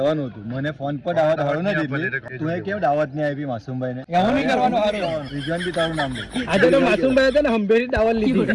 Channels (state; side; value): identical; both; correlation 1.00